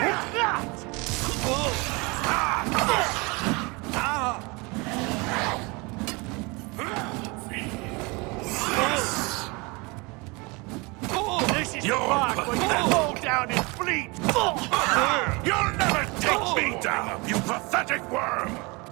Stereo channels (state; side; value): quieter; left; 27.1 dB